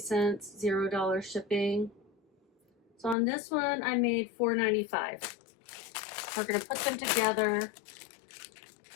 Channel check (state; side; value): drops out; right; at 3.2 s